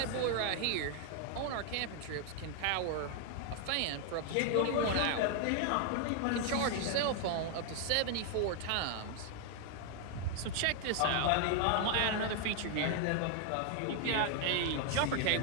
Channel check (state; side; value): different; both; correlation 0.00